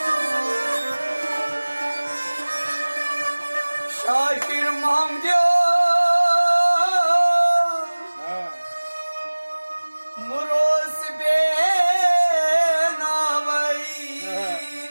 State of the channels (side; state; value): both; inverted; correlation -1.00